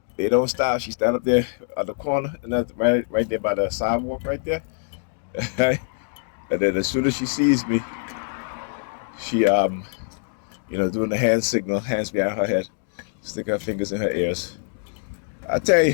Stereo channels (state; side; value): silent; right; digital silence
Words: they don't stop. She stand up there at the corner, and that's right there by the sidewalk, right there. And then as soon as she sees me, she doing the hand signal, hands behind her head, stick her fingers in her ears. I tell you,